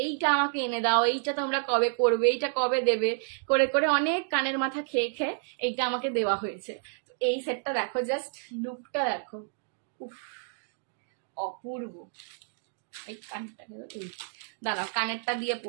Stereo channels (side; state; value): left; silent; digital silence